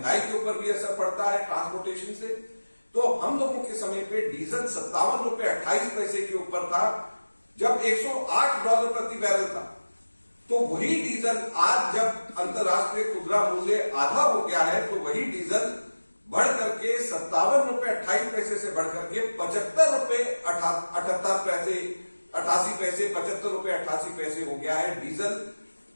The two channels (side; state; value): both; inverted; correlation -1.00